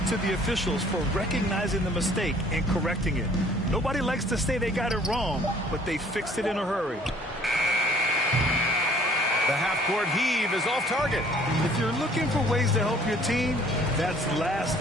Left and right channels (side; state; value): both; normal; correlation 0.57